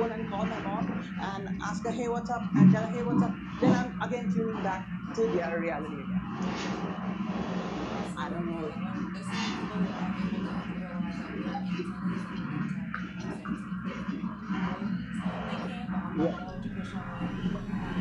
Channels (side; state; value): both; identical; correlation 1.00